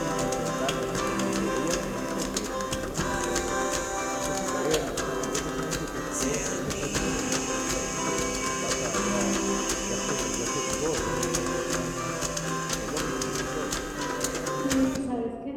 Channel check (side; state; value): both; identical; correlation 1.00